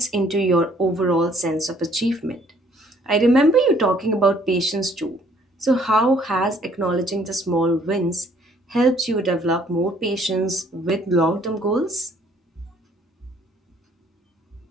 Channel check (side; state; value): both; normal; correlation 0.61